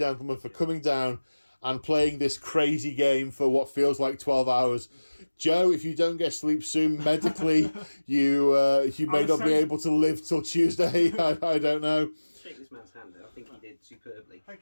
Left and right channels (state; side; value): inverted; both; correlation -1.00